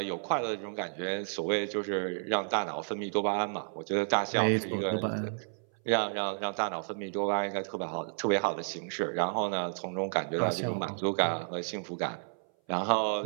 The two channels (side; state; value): left; silent; 57 dB below the other